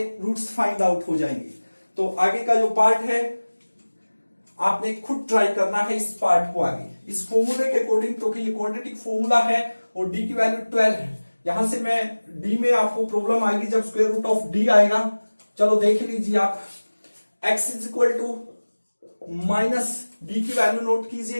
रूट्स फाइंड आउट हो जाएंगे। तो आगे का जो पार्ट है आपने खुद ट्राई करना है इस पार्ट को आगे, इस फॉर्मूले के अकॉर्डिंग। तो कि ये क्वाड्रेटिक फॉर्मूला है और d की वैल्यू 12 है। यहां से मैं d में आपको प्रॉब्लम आएगी जब स्क्वायर रूट ऑफ d आएगा। चलो देख लीजिए आप, x is equal to minus, d की वैल्यू नोट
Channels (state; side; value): inverted; both; correlation -1.00